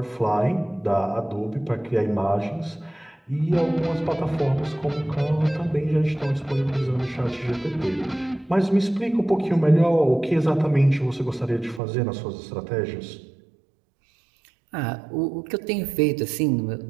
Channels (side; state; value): left; drops out; at 11.8 s